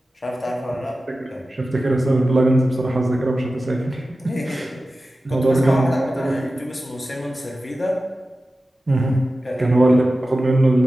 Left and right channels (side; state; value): both; normal; correlation 0.94